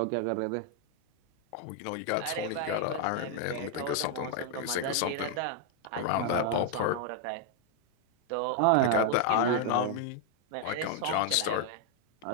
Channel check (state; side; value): different; both; correlation 0.00